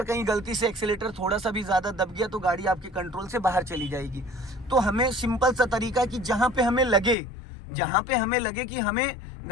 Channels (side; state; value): right; drops out; at 7.2 s